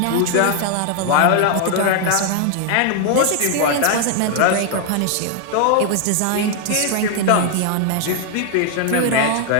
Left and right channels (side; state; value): both; different; correlation 0.00